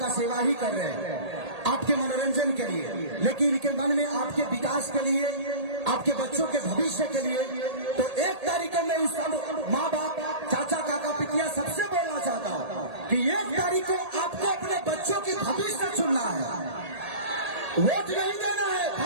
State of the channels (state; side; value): late; left; 1.8 ms